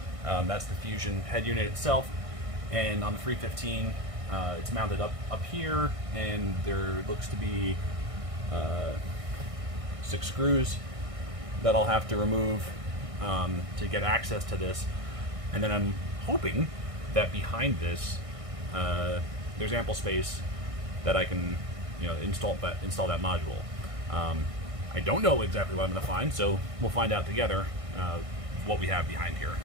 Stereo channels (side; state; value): left; late; 1.6 ms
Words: that's the Fusion head unit itself. And on the 315, it's mounted up here, and there looks to be 6 screws that I'll have to remove to get access to this. And then I'm hoping that behind this, there's ample space that I can, you know, install that module. I don't know exactly what I'm going to find, so we'll find out together what we have behind here.